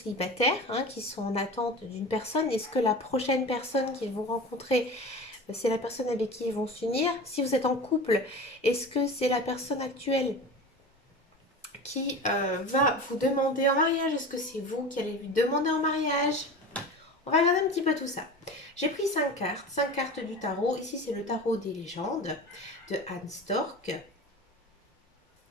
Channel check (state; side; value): normal; both; correlation 0.32